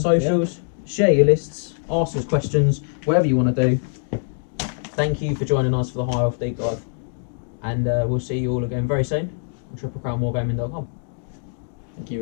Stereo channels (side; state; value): right; silent; digital silence